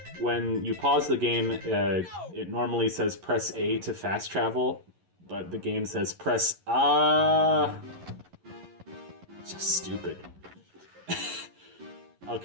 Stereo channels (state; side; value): late; left; 11 ms